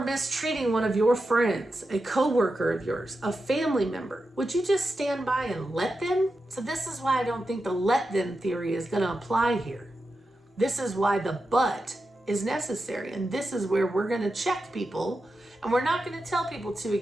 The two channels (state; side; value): normal; both; correlation 0.90